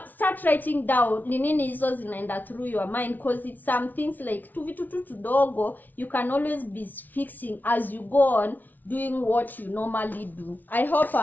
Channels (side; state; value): right; late; 0.083 ms